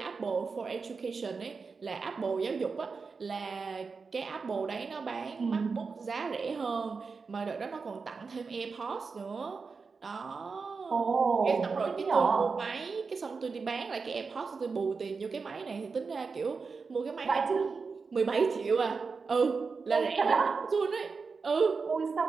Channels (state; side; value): quieter; left; 4.8 dB